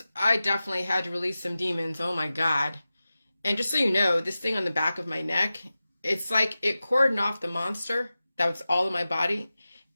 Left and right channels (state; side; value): inverted; both; correlation -0.95